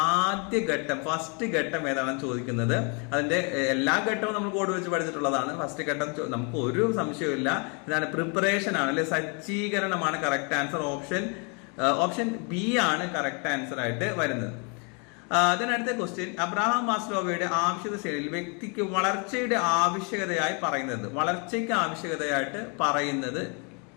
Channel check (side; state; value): right; quieter; 35.6 dB